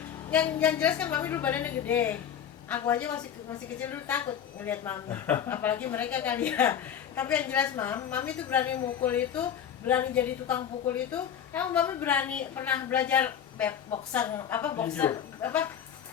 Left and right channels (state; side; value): quieter; right; 8.9 dB